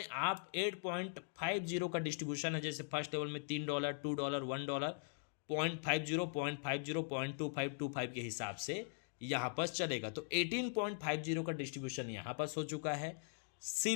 आप 8.50 का डिस्ट्रीब्यूशन है। जैसे फर्स्ट लेवल में $3, $2, $1, 0.50, 0.50, 0.25 के हिसाब से यहाँ पर चलेगा। तो 18.50 का डिस्ट्रीब्यूशन यहाँ पर हो चुका है।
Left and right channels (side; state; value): right; silent; digital silence